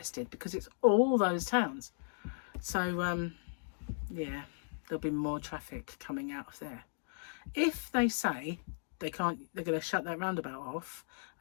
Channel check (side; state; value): right; silent; digital silence